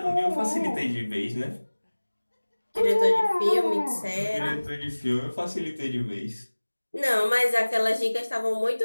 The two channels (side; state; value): both; inverted; correlation -1.00